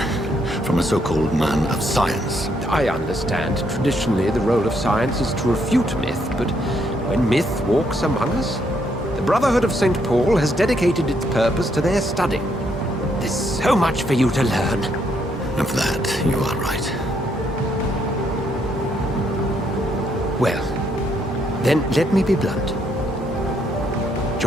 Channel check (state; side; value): normal; both; correlation 0.73